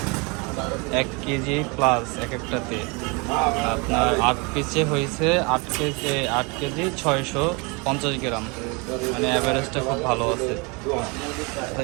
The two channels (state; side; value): quieter; left; 29.8 dB